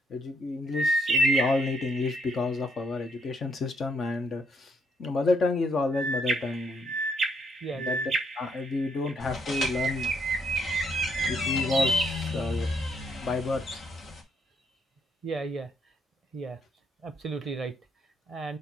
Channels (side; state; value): both; normal; correlation 0.72